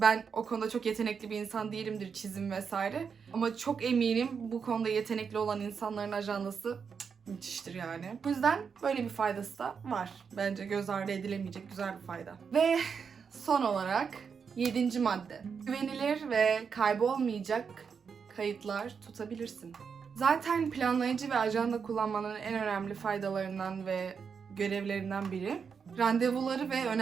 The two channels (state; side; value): quieter; left; 6.2 dB